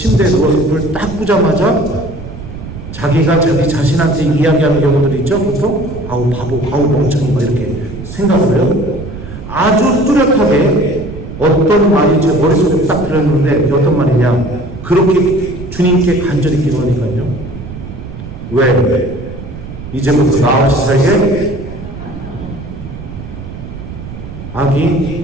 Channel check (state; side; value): noise; right; rumble, 11 dB below the sound